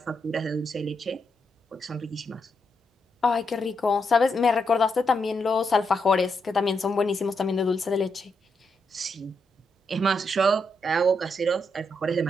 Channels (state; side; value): normal; both; correlation 0.81